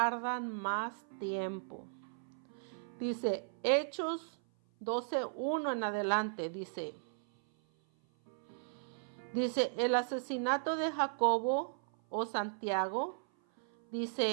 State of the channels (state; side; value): silent; left; 53 dB below the other